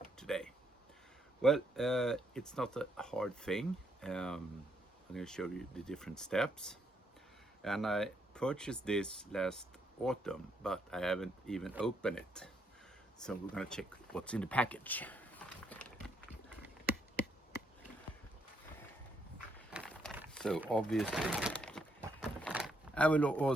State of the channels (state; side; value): normal; both; correlation 0.74